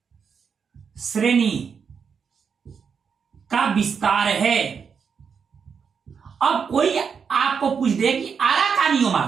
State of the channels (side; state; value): left; quieter; 6.4 dB